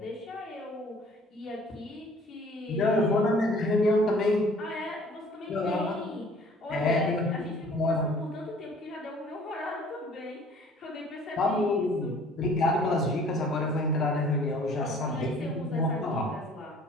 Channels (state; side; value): normal; both; correlation 0.53